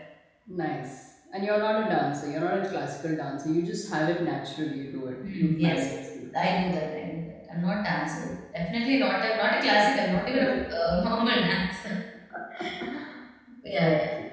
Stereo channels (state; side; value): identical; both; correlation 1.00